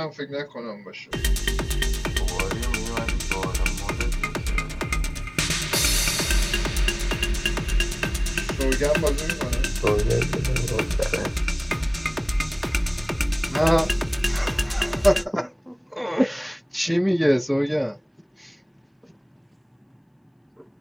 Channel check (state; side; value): identical; both; correlation 1.00